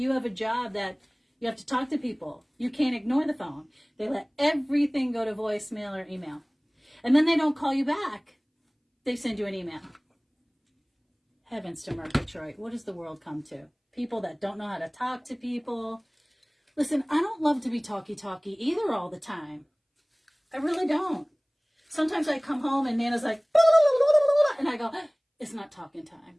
have a job that you have to talk to people. You can't ignore the phone. They let everything go to voicemail or email. And then they don't call you back. They send you an email. Heavens to Murgatroyd. What does the world come to? People that don't know how to talk to people. Listen, I don't love to be talky either all the time. I really don't. Sometimes I come home and Nana's like, and I go, it's not talking time.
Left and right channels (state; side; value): identical; both; correlation 1.00